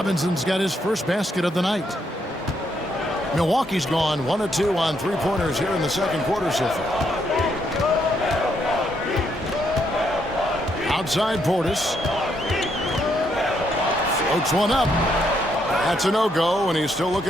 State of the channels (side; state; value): both; normal; correlation 0.75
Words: got his first basket of the night. Milwaukee's gone 1 of 2 on three-pointers here in the second quarter so far. Outside Portis. Floats one up. That's a no-go, and he's still